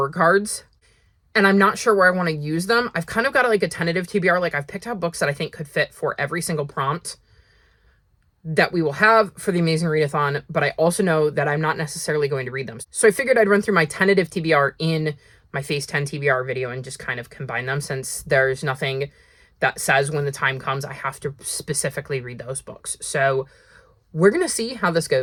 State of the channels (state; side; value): identical; both; correlation 1.00